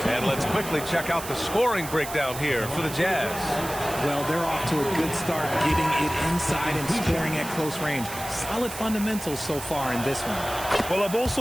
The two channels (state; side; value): noise; right; hiss, 10 dB below the sound